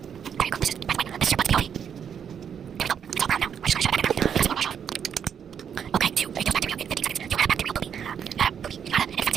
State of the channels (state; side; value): quieter; left; 7.9 dB